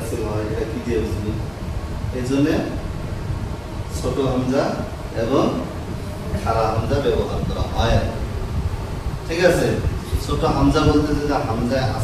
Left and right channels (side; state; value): both; identical; correlation 1.00